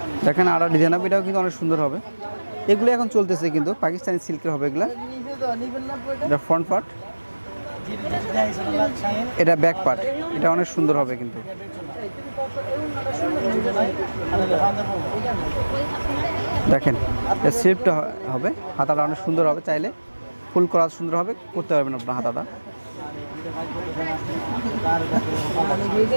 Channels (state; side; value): inverted; both; correlation -1.00